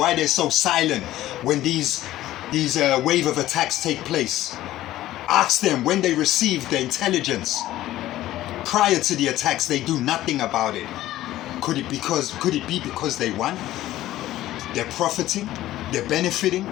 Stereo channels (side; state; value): right; quieter; 14.7 dB